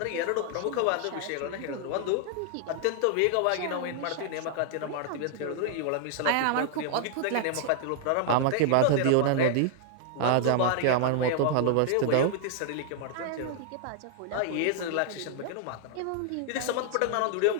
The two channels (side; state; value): both; different; correlation 0.00